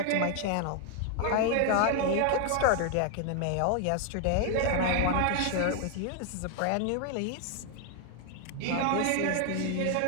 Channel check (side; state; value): both; different; correlation 0.00